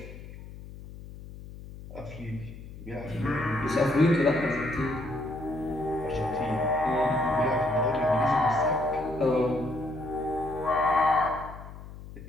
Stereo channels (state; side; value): noise; left; hum, 14 dB below the sound